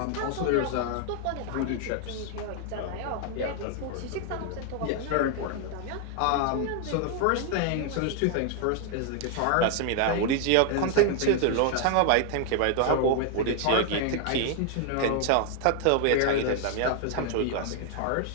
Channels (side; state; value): both; different; correlation 0.00